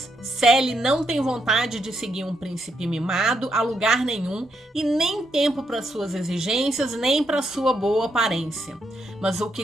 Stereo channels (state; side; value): normal; both; correlation 0.78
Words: Sally não tem vontade de seguir um príncipe mimado a lugar nenhum e nem tempo para suas exigências, nem para sua boa aparência. Mas o